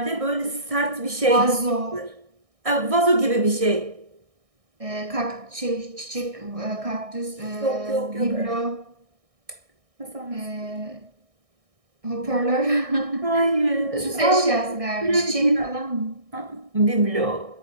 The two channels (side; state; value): left; late; 1.6 ms